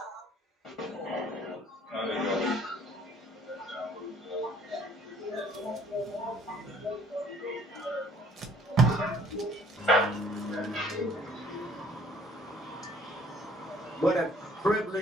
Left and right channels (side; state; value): both; normal; correlation 0.58